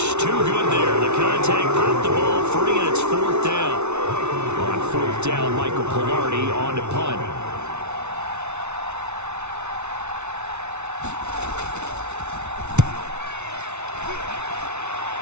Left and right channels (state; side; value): late; left; 0.82 ms